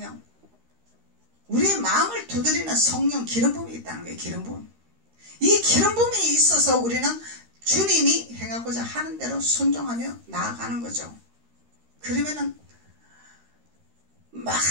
우리의 마음을 두드리는 성령 기름 부음이 있다는 거예요. 기름 부음. 이 기름 부음이 있어서 우리는 주님이 행하고자 하는 대로 순종하며 나아가는 거죠. 그러면은 막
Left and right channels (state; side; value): late; left; 13 ms